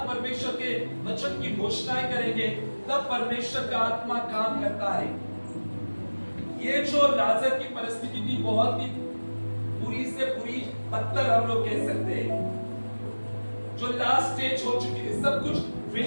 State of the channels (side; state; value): both; inverted; correlation -1.00